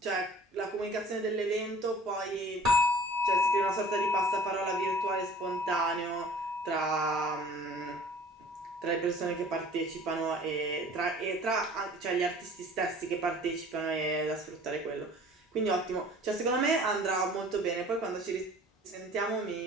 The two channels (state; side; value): normal; both; correlation 0.48